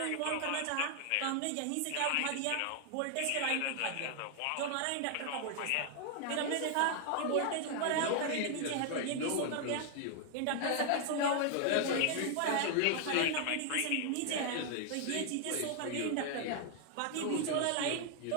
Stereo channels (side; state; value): both; different; correlation 0.00